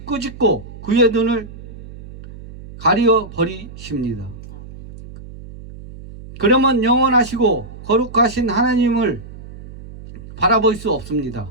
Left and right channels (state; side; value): noise; right; hum, 15 dB below the sound